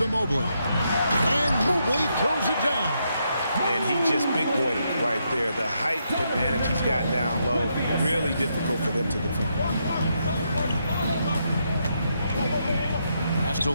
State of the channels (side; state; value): both; inverted; correlation -0.79